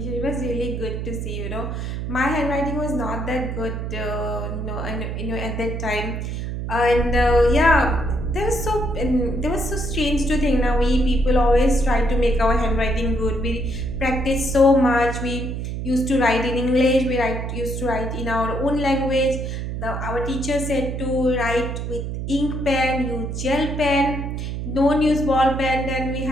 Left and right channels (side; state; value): right; noise; hum, 4 dB below the sound